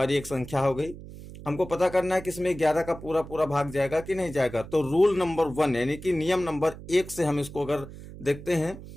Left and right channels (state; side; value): noise; right; hum, 14 dB below the sound